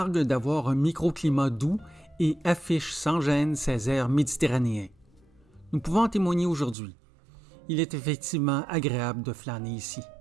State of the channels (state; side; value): drops out; left; at 6.8 s